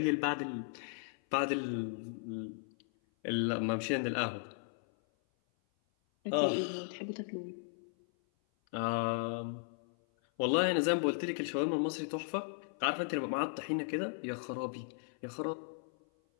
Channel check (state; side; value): silent; right; 54 dB below the other